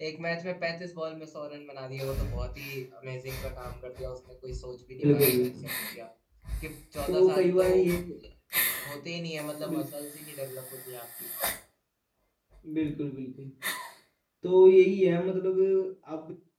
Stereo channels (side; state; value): both; identical; correlation 1.00